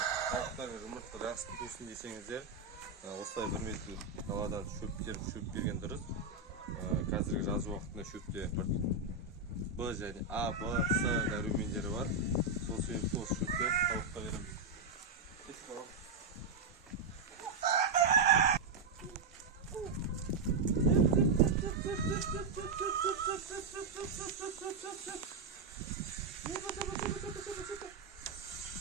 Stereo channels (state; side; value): quieter; left; 4.0 dB